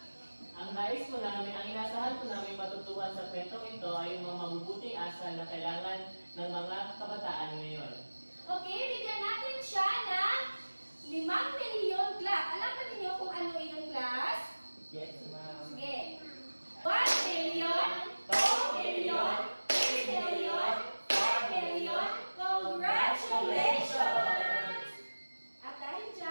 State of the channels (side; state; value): both; inverted; correlation -1.00